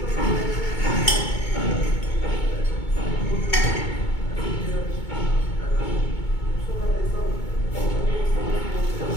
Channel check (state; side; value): late; right; 2.2 ms